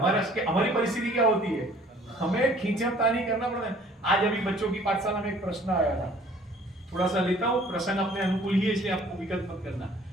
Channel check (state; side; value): normal; both; correlation 0.54